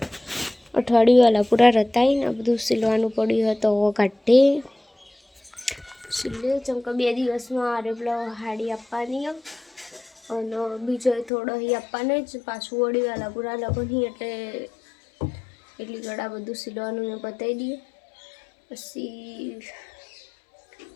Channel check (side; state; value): right; drops out; at 11.3 s